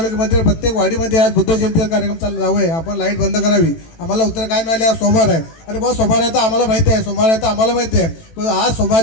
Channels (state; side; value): late; right; 18 ms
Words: प्रत्येक वाडीमध्ये आज बुद्ध जयंतीचा कार्यक्रम चालू आहे, आपण लाईट बंद करावी. आम्हाला उत्तर काय मिळाले? आज सोमवार आहे. अरे बा सोमवार आहे तर आम्हाला माहिती आहे, सोमवार आहे तर आम्हाला माहिती आहे. पण आज